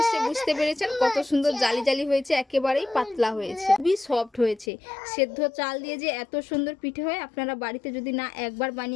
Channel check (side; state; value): right; drops out; at 4.7 s